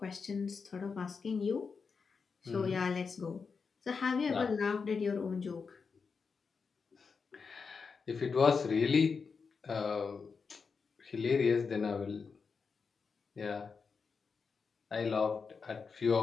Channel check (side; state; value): right; quieter; 5.3 dB